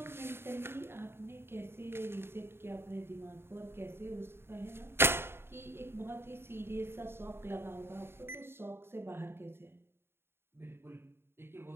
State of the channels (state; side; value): late; left; 0.11 ms